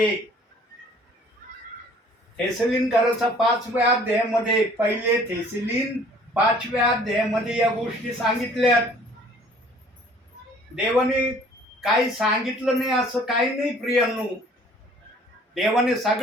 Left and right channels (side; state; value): both; normal; correlation 0.54